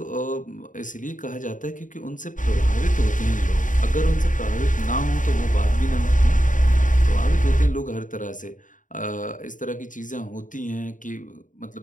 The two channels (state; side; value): late; right; 0.38 ms